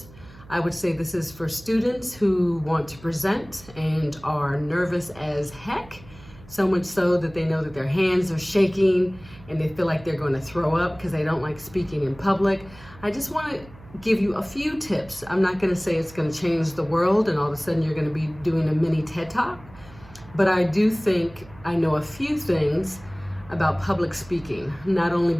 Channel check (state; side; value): noise; right; hum, 21 dB below the sound